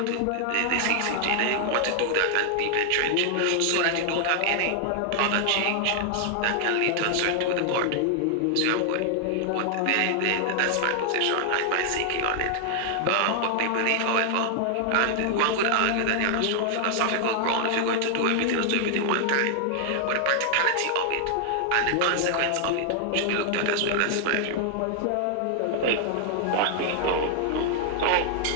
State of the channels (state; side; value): different; both; correlation 0.00